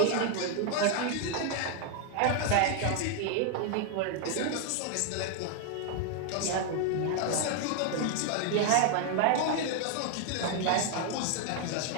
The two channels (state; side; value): different; both; correlation 0.00